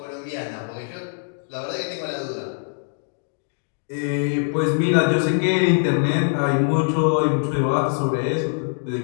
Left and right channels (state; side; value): silent; right; digital silence